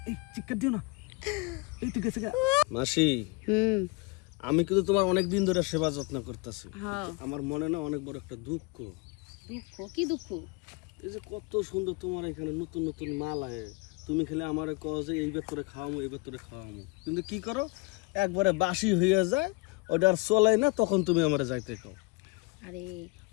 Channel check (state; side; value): quieter; right; 26.5 dB